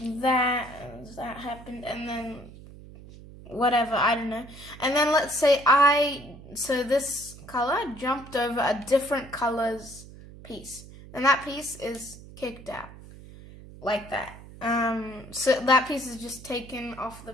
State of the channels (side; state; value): right; noise; hum, 17 dB below the sound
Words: that happened, and then whatever, I don't know, and then let's say so this color jumped over a different color's piece, and that piece is kicked out like that. So that piece is just taken off the